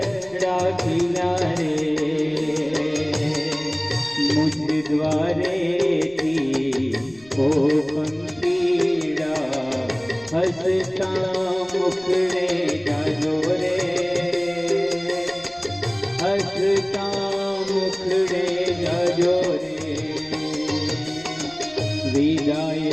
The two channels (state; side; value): noise; left; rumble, 27 dB below the sound